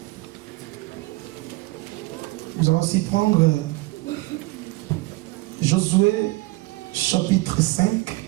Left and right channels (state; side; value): quieter; left; 21.7 dB